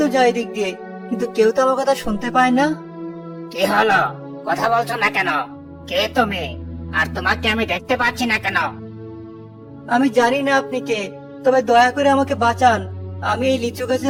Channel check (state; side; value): identical; both; correlation 1.00